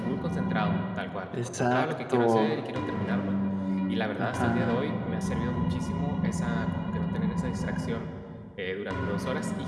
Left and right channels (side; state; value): both; identical; correlation 1.00